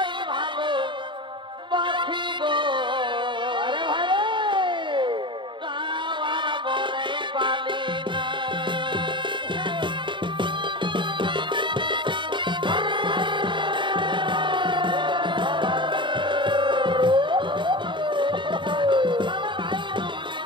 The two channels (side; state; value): left; late; 0.23 ms